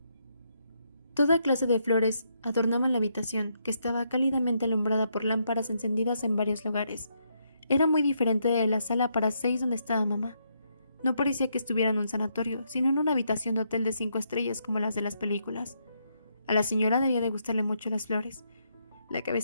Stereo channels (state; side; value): inverted; both; correlation -0.77